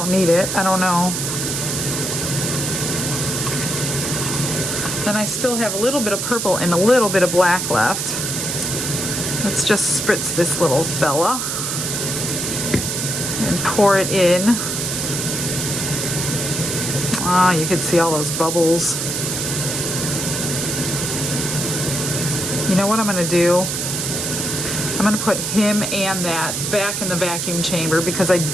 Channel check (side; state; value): right; noise; hiss, 2 dB below the sound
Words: need it. I don't know. Then I still have a little bit of purple and a little bit of black left. Let's just spritz this little fella and pour it in. Ah, you can see all those bubbles. You know what I'm going to do? I'm going to put him and that back in the vacuum chamber because I